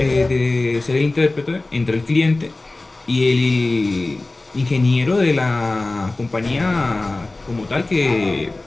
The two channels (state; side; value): quieter; right; 3.0 dB